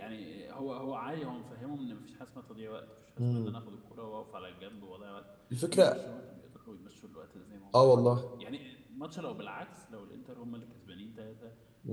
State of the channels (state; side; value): identical; both; correlation 1.00